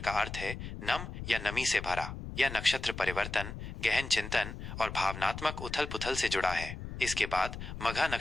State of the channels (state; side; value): noise; left; rumble, 8 dB below the sound